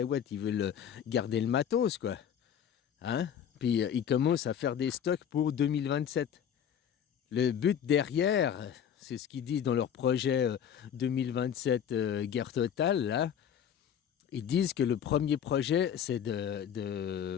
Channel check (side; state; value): right; quieter; 8.8 dB